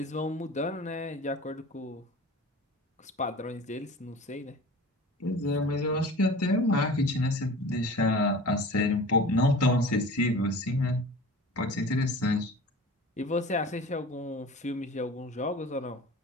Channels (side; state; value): both; normal; correlation 0.39